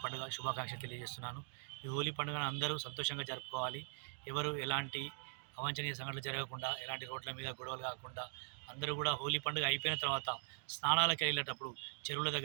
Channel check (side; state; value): left; silent; digital silence